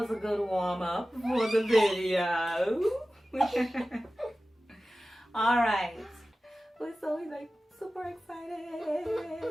a good warm-up for the video. Alright. We're so like super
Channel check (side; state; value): both; normal; correlation 0.96